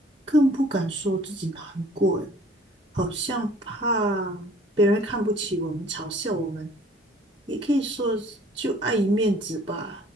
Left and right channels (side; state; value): both; normal; correlation 0.54